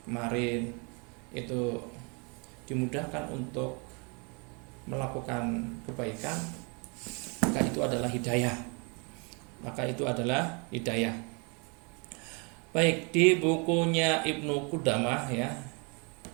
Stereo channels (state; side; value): quieter; left; 33.2 dB